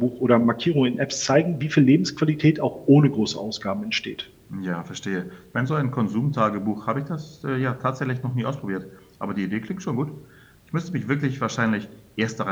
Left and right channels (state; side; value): identical; both; correlation 1.00